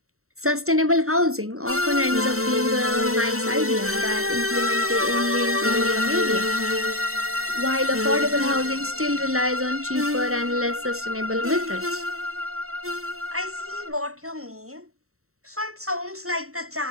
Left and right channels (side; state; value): left; late; 0.63 ms